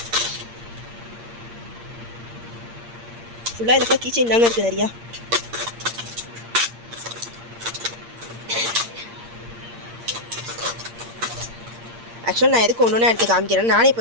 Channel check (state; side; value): late; left; 8.6 ms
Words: ஃபுல்லாக இதுக்கு கிச்சன் தாங்க இருக்குது நிறையா. ஆக்சுவலாக நான் எதுக்கு ஒன்று ஒன்றா எடுத்து காமிக்கிறேன், நானே